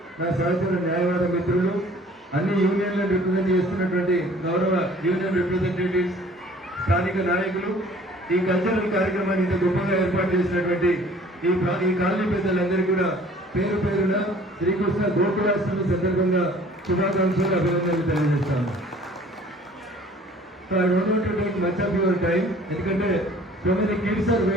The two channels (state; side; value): normal; both; correlation 0.52